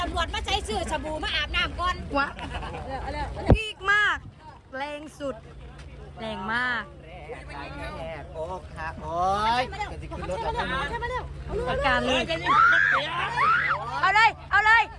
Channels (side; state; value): both; identical; correlation 1.00